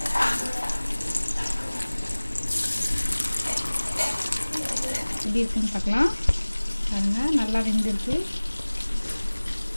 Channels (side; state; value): both; inverted; correlation -1.00